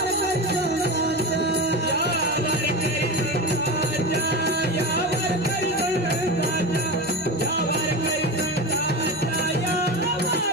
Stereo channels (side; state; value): both; normal; correlation 0.23